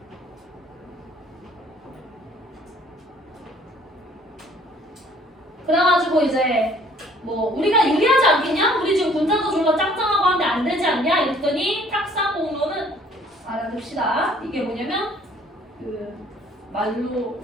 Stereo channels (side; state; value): both; normal; correlation 0.58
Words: 그래가지고 이제 뭐 우리가 유리하지 않겠냐? 우리 지금 군자도 졸라 짱짱하고 하는데 안 되지 않냐? 이랬더니 탁상공론은 알아둡시다. 이게 뭐냐면 말로